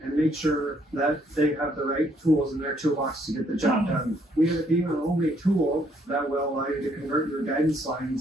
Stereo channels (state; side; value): normal; both; correlation 0.68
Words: and make sure that they have the right tools in their toolbox to get the job done. We end up being our only tool that will allow you to convert your guidance